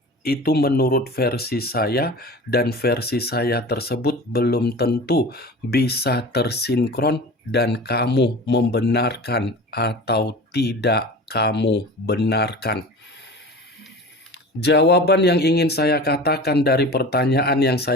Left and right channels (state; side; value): normal; both; correlation 0.36